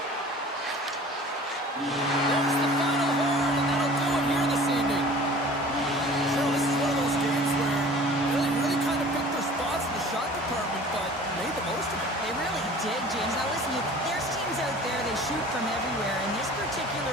There's the final horn, and that'll do it here this evening. Cheryl, this is one of those games where really kind of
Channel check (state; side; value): normal; both; correlation 0.45